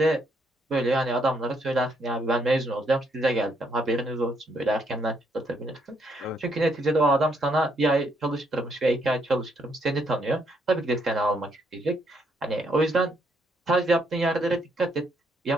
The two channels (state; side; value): normal; both; correlation 0.73